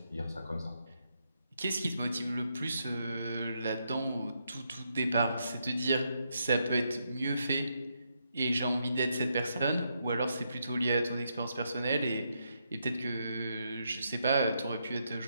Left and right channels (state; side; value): inverted; both; correlation -0.80